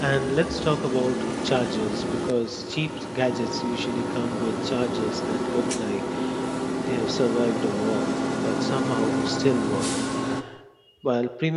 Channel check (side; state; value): both; identical; correlation 1.00